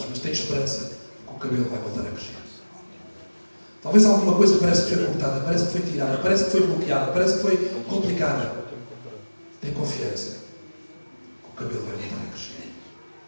mas tens esperança que o cabelo vai voltar a crescer. Talvez alguma coisa parece que foi cortada, parece que foi tirada, parece que foi bloqueada, parece que foi complicada. Tem confiança que o cabelo vai voltar a crescer.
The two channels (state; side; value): inverted; both; correlation -1.00